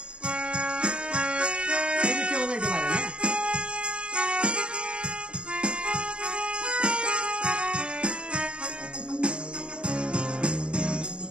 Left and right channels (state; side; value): late; left; 0.056 ms